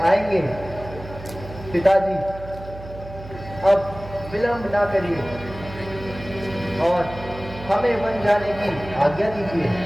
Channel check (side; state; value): right; noise; hum, 14 dB below the sound